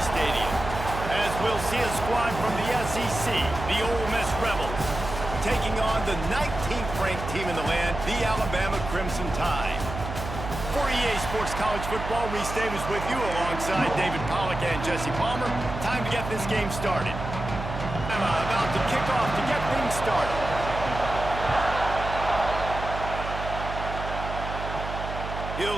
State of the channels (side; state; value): right; noise; hum, 7 dB below the sound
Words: Stadium. As we'll see a squad from the SEC, the Ole Miss Rebels, taking on the 19th ranked team in the land, the Alabama Crimson Tide. For EA Sports College Football, Reese Davis with you alongside David Pollack and Jesse Palmer. Time to get this game started. About to kick off to get things started.